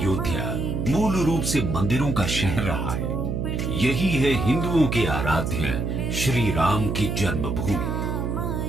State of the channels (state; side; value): noise; right; hum, 1 dB below the sound